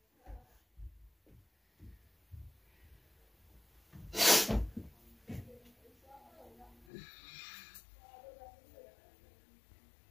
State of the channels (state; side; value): drops out; right; at 6.9 s